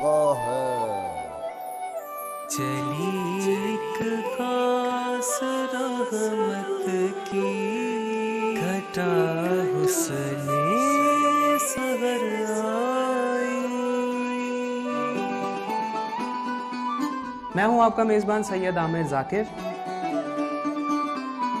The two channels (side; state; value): both; identical; correlation 1.00